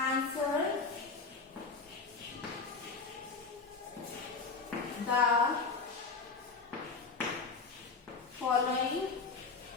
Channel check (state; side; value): quieter; right; 4.6 dB